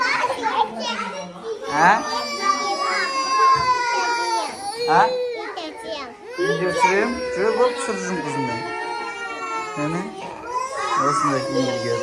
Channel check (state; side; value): identical; both; correlation 1.00